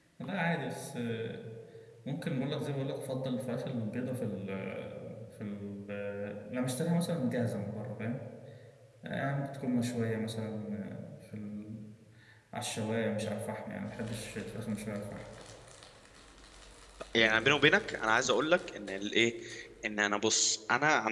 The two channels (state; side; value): identical; both; correlation 1.00